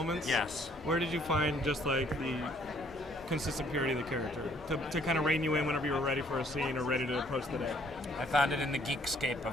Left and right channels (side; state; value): both; normal; correlation 0.63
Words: Yes. Where did you find just like the consistent purity of the character to kind of rein you in whenever you were ready for a scene or ready to approach the day? I found it in the Geekscape